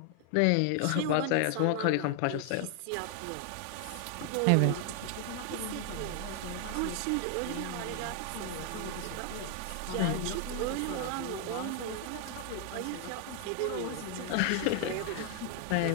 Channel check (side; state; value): both; different; correlation 0.00